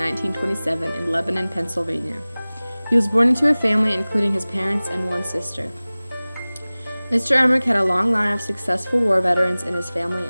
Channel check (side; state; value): both; inverted; correlation -0.99